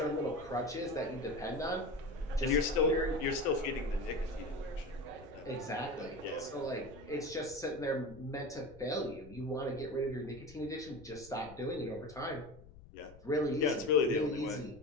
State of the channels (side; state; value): left; noise; rumble, 19 dB below the sound